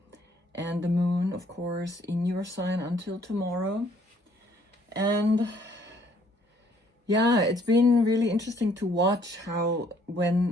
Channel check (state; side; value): normal; both; correlation 0.63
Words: and the Moon, of course, in your sign until tomorrow. And yeah, it's been really interesting to watch how